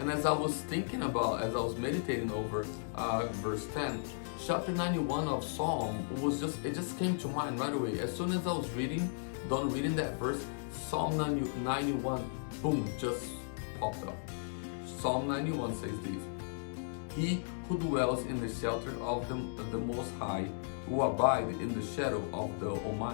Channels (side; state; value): right; silent; digital silence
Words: as I was thinking about, as I was meditating over verse 10, chapter 91 of Psalm it just came to mind right away. As soon as I was done reading that verse, Psalm 91, boom, just popped up. Psalm 91 says this: He who dwells in the shelter of the Most High will abide in the shadow of the